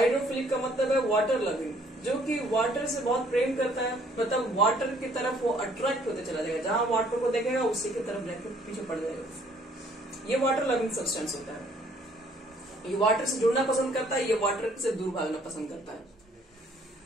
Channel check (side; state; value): both; normal; correlation 0.61